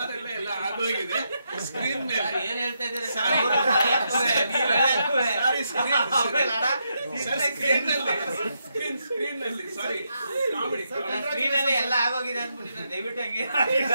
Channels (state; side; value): inverted; both; correlation -0.81